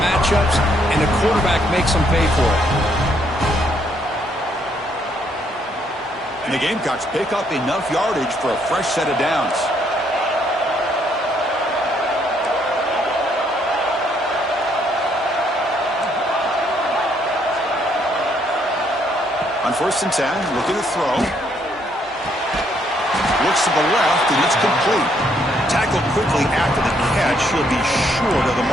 matchups, and the quarterback makes them pay for it. And the Gamecocks pick up enough yardage for a fresh set of downs. On 1st and 10, looking to throw. Looks to the left, and it's complete. Tackled quickly after the catch. He'll be short of the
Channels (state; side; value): normal; both; correlation 0.70